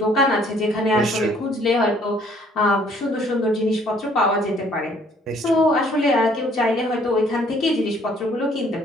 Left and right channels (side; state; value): both; normal; correlation 0.61